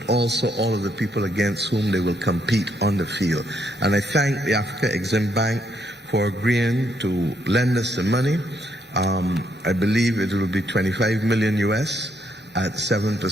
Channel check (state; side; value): normal; both; correlation 0.74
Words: also all of the people against whom they will compete on the field. And I thank the Africa Exim Bank for agreeing to lend us the money. I believe it will be 25 million US at